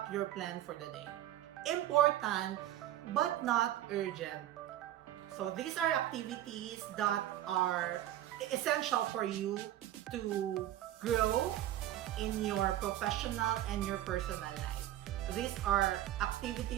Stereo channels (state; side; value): quieter; left; 13.2 dB